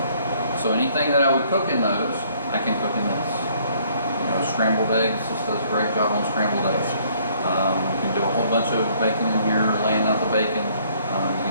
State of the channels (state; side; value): inverted; both; correlation -0.62